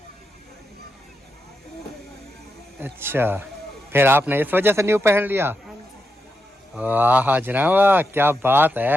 अच्छा, फिर आपने इस वजह से न्यू पहन लिया। हाँ जी। वाह हाजरा वाह, क्या बात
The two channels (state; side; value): normal; both; correlation 0.86